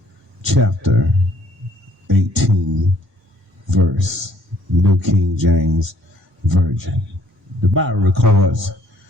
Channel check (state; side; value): normal; both; correlation 0.63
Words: chapter, 18th verse, New King James Version. The Bible records,